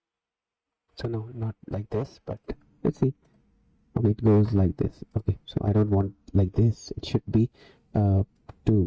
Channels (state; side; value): identical; both; correlation 1.00